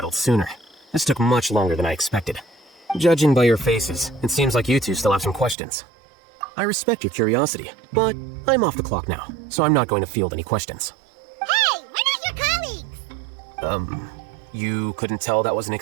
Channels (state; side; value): drops out; left; at 5.6 s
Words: sooner. This took much longer than I expected. Judging by your faces, it seems like you two still have some questions. I respect your curiosity, but I'm off the clock now, so I'm not going to field any questions. Hey, we're not your colleagues! You couldn't tell that was an